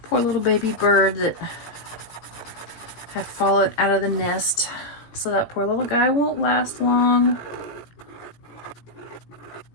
poor little baby bird that had fallen out of the nest. So that poor little guy won't last long.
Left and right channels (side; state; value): right; late; 17 ms